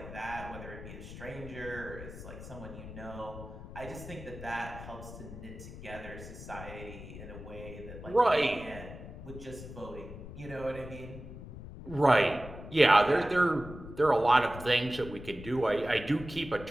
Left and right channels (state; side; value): noise; left; rumble, 12 dB below the sound